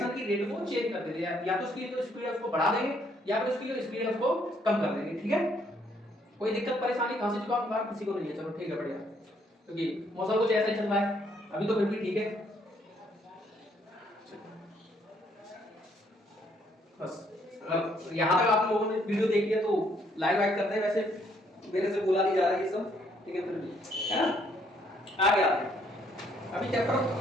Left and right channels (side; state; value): both; normal; correlation 0.68